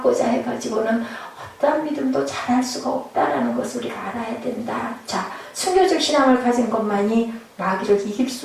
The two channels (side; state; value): both; identical; correlation 1.00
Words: 해가지고는 어떤 믿음도 잘할 수가 없다라는 것을 우리가 알아야 된다. 자, 순교적 신앙을 가진 것만이 마귀를 이길